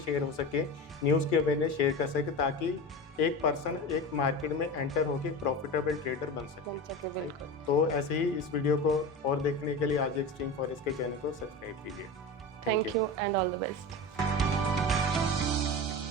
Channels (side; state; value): both; normal; correlation 0.27